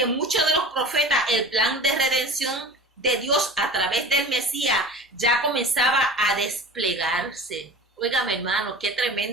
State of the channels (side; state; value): both; normal; correlation 0.37